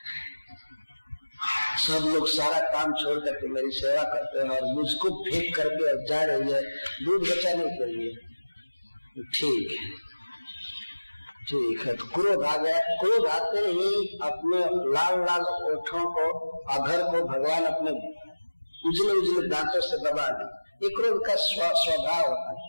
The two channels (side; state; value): both; inverted; correlation -1.00